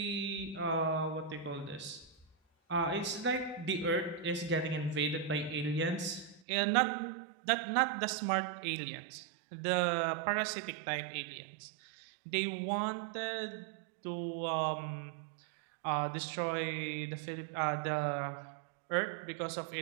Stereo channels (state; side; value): drops out; left; at 6.4 s